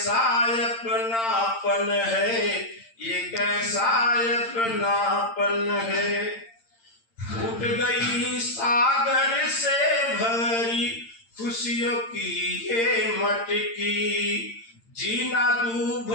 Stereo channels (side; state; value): right; late; 8.8 ms